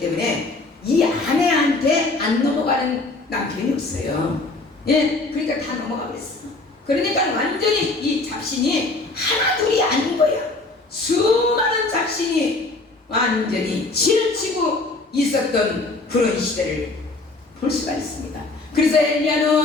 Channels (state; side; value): quieter; right; 3.2 dB